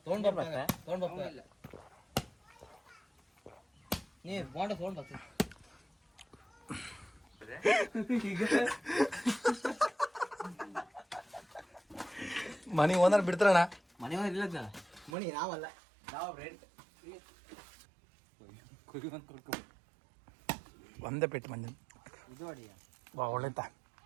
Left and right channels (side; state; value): left; drops out; at 15.2 s